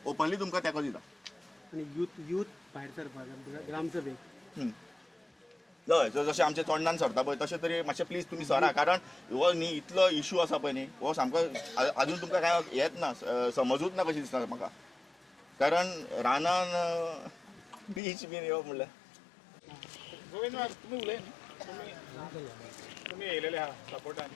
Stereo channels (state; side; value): drops out; right; at 18.0 s